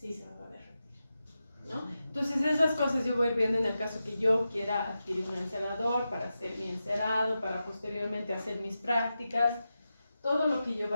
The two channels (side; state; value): both; inverted; correlation -0.91